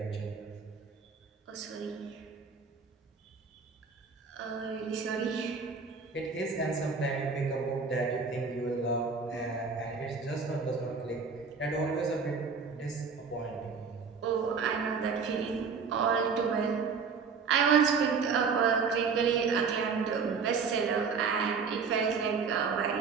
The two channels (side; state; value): left; quieter; 5.4 dB